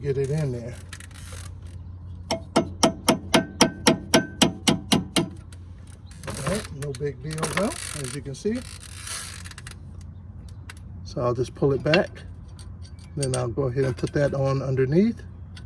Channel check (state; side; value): identical; both; correlation 1.00